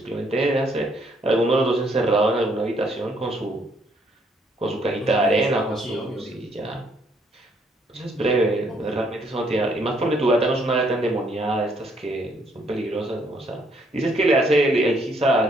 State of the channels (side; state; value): both; normal; correlation 0.68